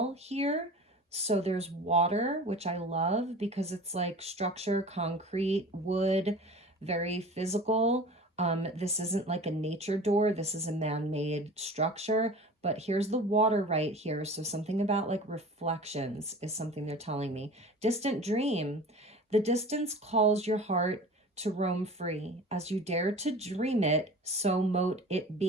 here. So there's water, which I love because it's like structure, concrete, wood, very physical. This isn't like a nature door. This is a man-made structure, but here's the water right here. So something about like reflections is something they're telling me. Distant dream. The distance calls your heart to roam free. As you dare to dream it, so mote it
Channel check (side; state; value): both; normal; correlation 0.39